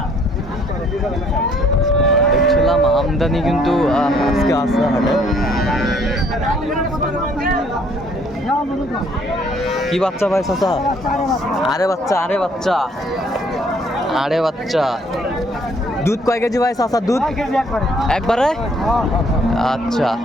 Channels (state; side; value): normal; both; correlation 0.63